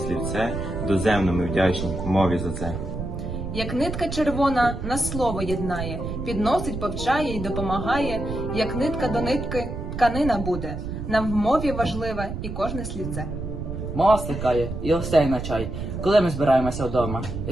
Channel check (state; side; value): noise; right; rumble, 6 dB below the sound